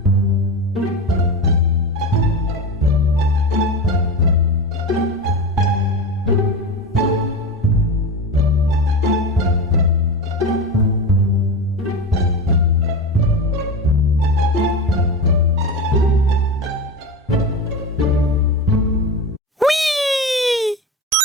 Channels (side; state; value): both; normal; correlation 0.24